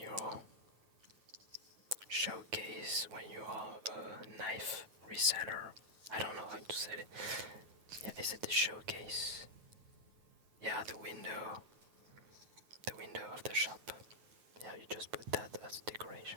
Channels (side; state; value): left; late; 9.2 ms